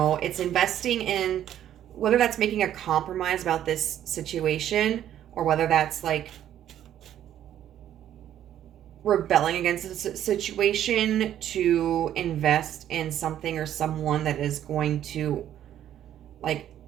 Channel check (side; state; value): left; quieter; 11.1 dB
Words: it's investing in, whether that's making a compromise about this situation or whether that's like rebelling against the situation to invest in something or someone that is going to, like,